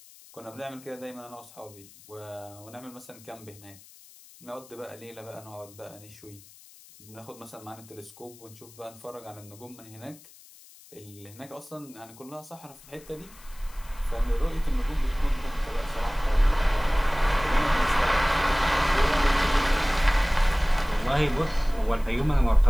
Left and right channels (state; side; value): noise; left; hiss, 22 dB below the sound